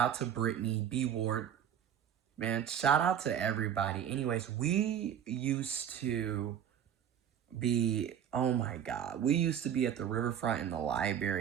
to Brittany, B Ward. Man, shout out to everybody. Anyways, we used to be, oh my God, we used to be at the riverfront in the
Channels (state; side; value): quieter; left; 9.3 dB